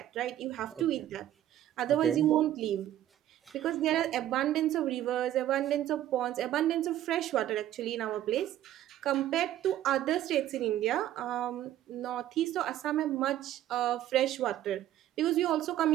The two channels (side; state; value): left; quieter; 12.6 dB